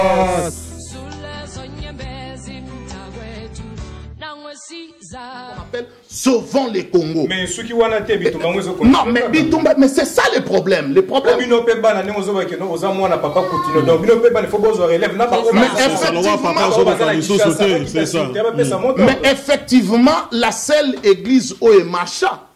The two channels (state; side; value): identical; both; correlation 1.00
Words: On appelle sauvons les Congo. Mais ceux qui ont été Bitumba, non, mais Bitumba, mais c'est ça le problème. Le problème. Mais effectivement, la seule église où est Macha.